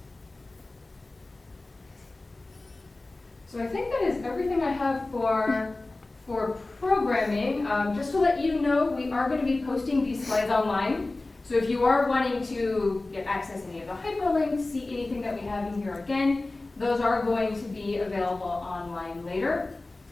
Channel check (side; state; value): right; quieter; 3.0 dB